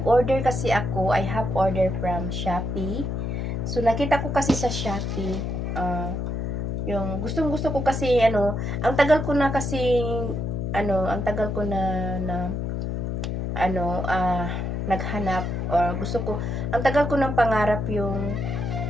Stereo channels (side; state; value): left; noise; hum, 2 dB below the sound